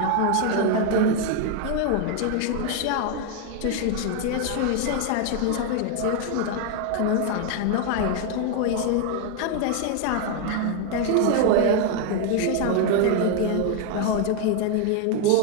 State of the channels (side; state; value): both; different; correlation 0.00